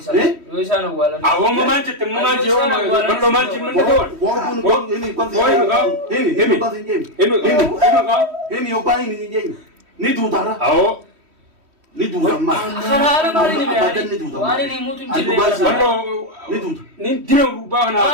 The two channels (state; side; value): late; left; 3.1 ms